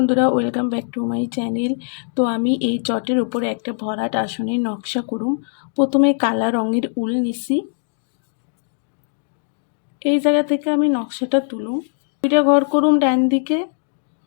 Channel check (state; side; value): silent; right; digital silence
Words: welcome back to my channel. তো আমি এই চটের উপরে একটা ভরাট আসনের নকশা করুম। প্রথমে কালা রঙের উল নিছি। এই জায়গা থেকে আমি নকশাটা তুলুম। দুইটা ঘর করুম ডান দিকে।